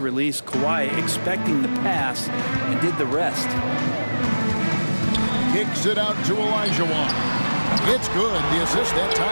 Kawhi expecting the pass and did the rest. Kicks it out to Olajuwon. It's good. The assist that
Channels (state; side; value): inverted; both; correlation -1.00